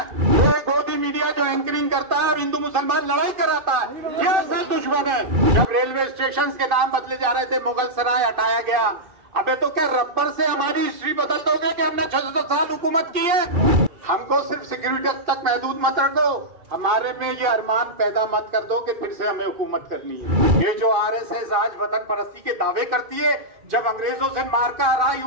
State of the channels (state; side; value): late; left; 2.5 ms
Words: वो गोदी मीडिया जो एंकरिंग करता है और हिंदू मुसलमान लड़ाई कराता है, ये असल दुश्मन है। जब रेलवे स्टेशन के नाम बदले जा रहे थे, मुगल सराय हटाया गया। अबे तो क्या रबर से हमारी हिस्ट्री बदल दोगे कि हमने 600 साल हुकूमत की है? हमको सिर्फ सिक्योरिटी तक महदूद मत रखो, हमारे में ये अरमान पैदा मत कर दो कि फिर से हमें हुकूमत करनी है। ये जो आरएसएस आज वतन परस्ती के दावे करती है, जब अंग्रेजों से मार का हराई